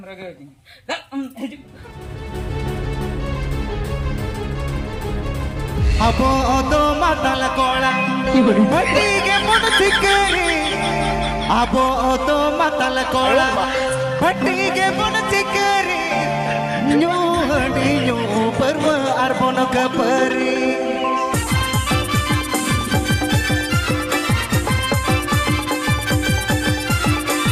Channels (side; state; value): both; identical; correlation 1.00